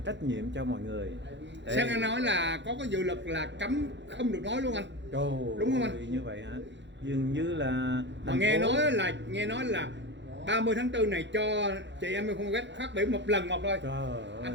trách nhiệm cho mọi người. Xem anh nói là có cái dự luật là cấm không được nói luôn anh. Đúng không anh? Như vậy hả? Dường như là mà nghe nói là 30 tháng 4 này cho chị Amy Phan West phát biểu một lần một thôi. Anh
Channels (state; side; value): late; left; 0.52 ms